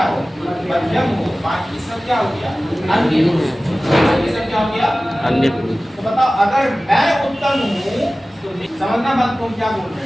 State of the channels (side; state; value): both; normal; correlation 0.97